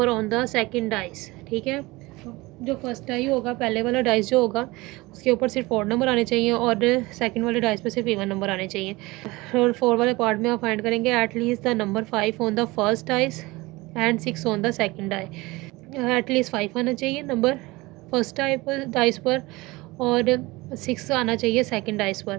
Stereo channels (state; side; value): quieter; left; 21.8 dB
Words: on the second dice. ठीक है, जो फर्स्ट डाई होगा, पहले वाला डाइस जो होगा उसके ऊपर सिर्फ ओड नंबर आने चाहिए और सेकंड वाले डाइस पे सिर्फ इवन नंबर आने चाहिए। और 4 वाले पार्ट में आप फाइंड करेंगे at least the number 5 on the first dice and 6 on the second die. At least 5 आना चाहिए नंबर फर्स्ट डाइस पर और 6 आना चाहिए सेकंड डाइस